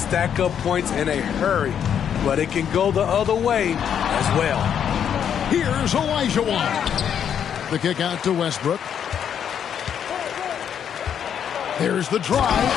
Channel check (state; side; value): quieter; right; 8.6 dB